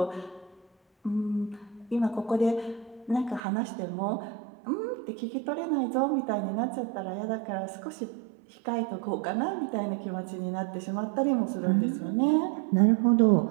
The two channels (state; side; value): drops out; left; at 3.4 s